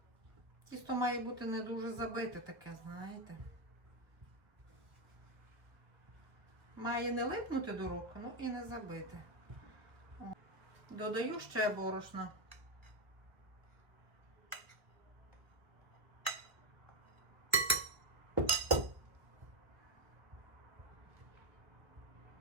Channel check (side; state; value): left; late; 1.2 ms